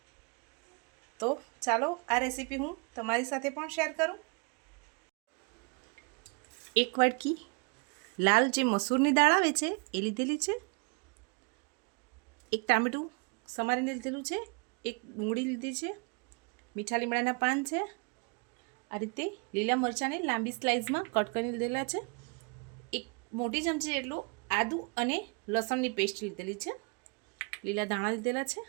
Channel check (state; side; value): quieter; left; 32.5 dB